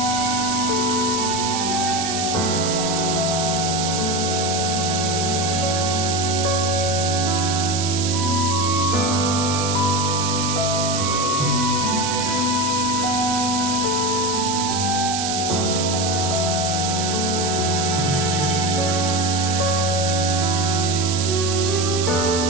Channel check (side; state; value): right; noise; hiss, 2 dB below the sound